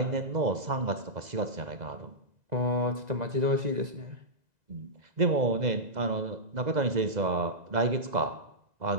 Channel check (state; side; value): late; left; 2.0 ms